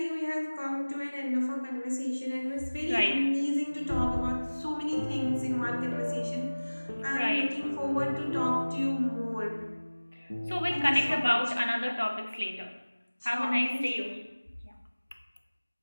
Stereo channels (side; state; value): both; inverted; correlation -1.00